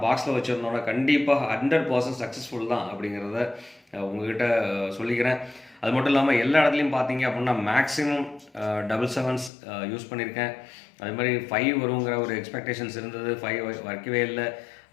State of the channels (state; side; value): drops out; right; at 9.5 s